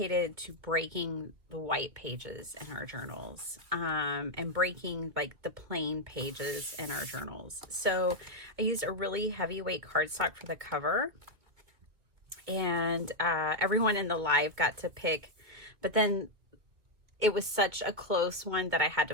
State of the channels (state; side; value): late; left; 2.7 ms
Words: to breaking the white pages in our journals and breaking like the plain pages in our journals. So I used a really heavyweight cardstock for the cover, and everyone in the live got to pick, but then it was such a close one that I had